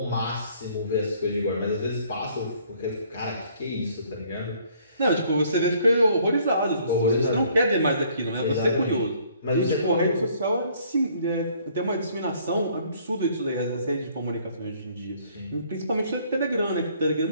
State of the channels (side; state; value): both; inverted; correlation -0.61